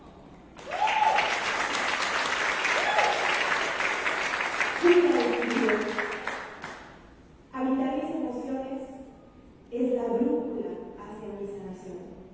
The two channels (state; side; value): identical; both; correlation 1.00